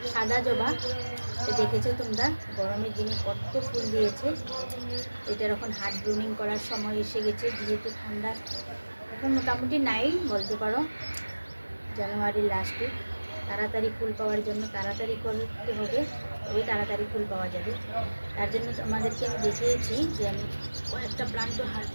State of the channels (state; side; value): inverted; both; correlation -1.00